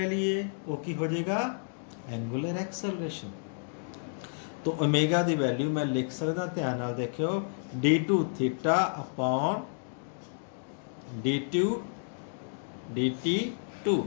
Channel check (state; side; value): silent; right; digital silence